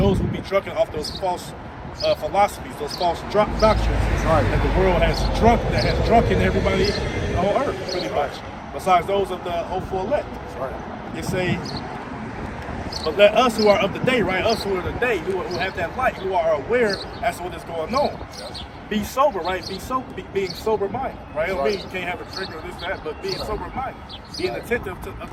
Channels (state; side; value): identical; both; correlation 1.00